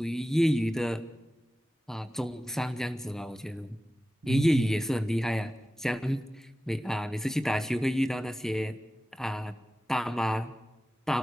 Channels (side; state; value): both; normal; correlation 0.95